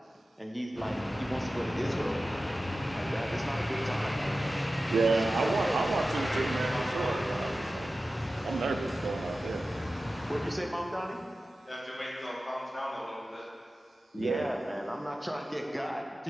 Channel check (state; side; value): normal; both; correlation 0.95